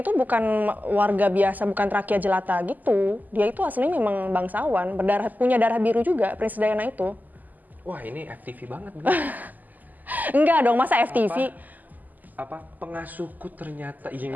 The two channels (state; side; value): late; left; 0.083 ms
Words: bukan warga biasa, bukan rakyat jelata gitu. Dia itu aslinya memang bangsawan, punya darah biru juga Princess Diana itu. Wah ini FTV banget. Enggak dong, masa FTV? Apa pengasuhku ternyata